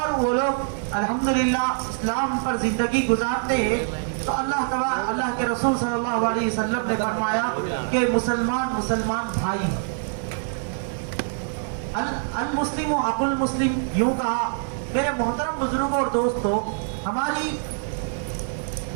وہ لوگ الحمدللہ اسلام پر زندگی گزارتے ہیں. تو اللہ کے رسول صلی اللہ علیہ وسلم نے فرمایا کہ مسلمان بھائی. المسلم اخو المسلم یوں کہا۔ میرے محترم بزرگوں اور دوستوں، ہماری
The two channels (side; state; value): left; silent; 62 dB below the other